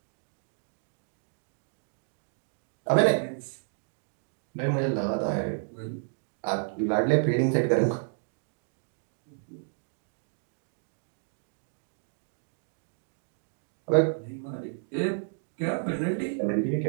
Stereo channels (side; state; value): left; silent; digital silence